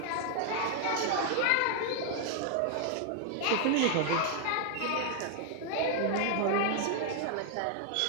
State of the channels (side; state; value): both; different; correlation 0.00